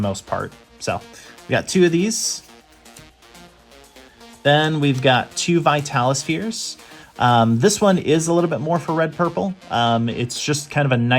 part. So we got 2 of these. Then we've got 2 Vitalispheres. This one is a little bit more for red purple. It's just kind of a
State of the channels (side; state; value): both; identical; correlation 1.00